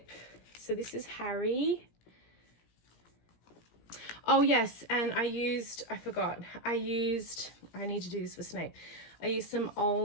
So this is Harry. Oh yes, and I need to do this for Snape. I used some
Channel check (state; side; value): late; right; 17 ms